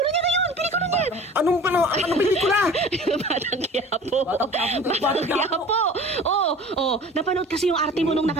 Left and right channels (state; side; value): normal; both; correlation 0.42